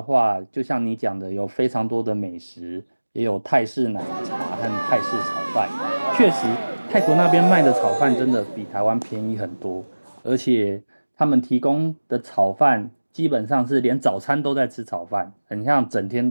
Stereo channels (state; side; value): inverted; both; correlation -1.00